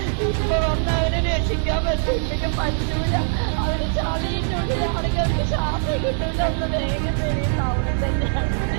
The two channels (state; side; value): silent; left; digital silence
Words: ഇപ്പൊ വന്ന് അവരെ രക്ഷിക്കാൻ പറ്റില്ല, പറ്റൂല. അവര് ചളിന്റെ ഉള്ളിലാണെങ്കിൽ അവർക്ക് ശ്വാസം കിട്ടൂല. ഒന്ന് വേഗം വരെയും ടൗണിൽ തന്നെയാണ്.